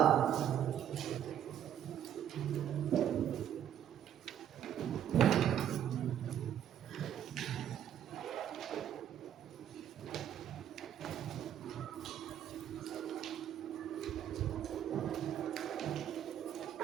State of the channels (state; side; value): quieter; left; 10.2 dB